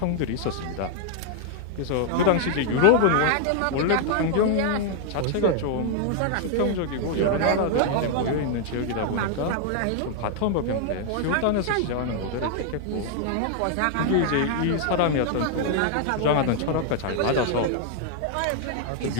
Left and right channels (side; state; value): both; different; correlation 0.00